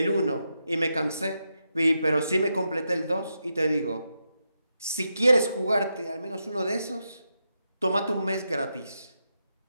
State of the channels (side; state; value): both; inverted; correlation -0.85